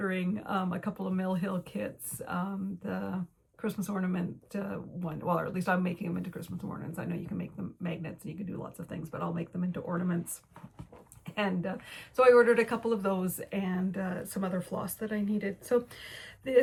a couple of Mill Hill kits, the Christmas ornament one, well, or at least I'm making them into Christmas ornaments. I know you can make them magnets and you can do lots of things, but I'll make them into ornaments. And so I ordered a couple of those and some other floss that I needed. So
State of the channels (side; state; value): both; identical; correlation 1.00